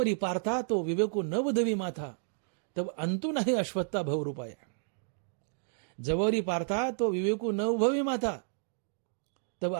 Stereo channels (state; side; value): silent; left; digital silence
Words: पार्था तो विवेको नवधवी माथा तब अंतु नाही अश्वत्था भवरूपाया. जबवरी पार्था तो विवेको नवभवी माथा तब